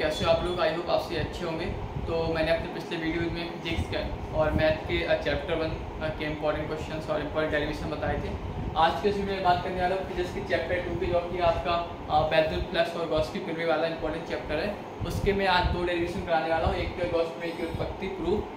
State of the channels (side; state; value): both; identical; correlation 1.00